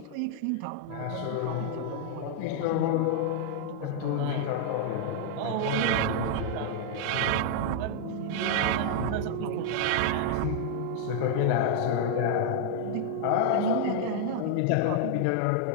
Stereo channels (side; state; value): both; different; correlation 0.00